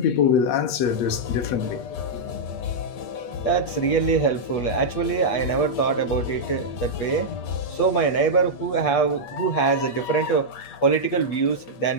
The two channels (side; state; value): right; late; 8.4 ms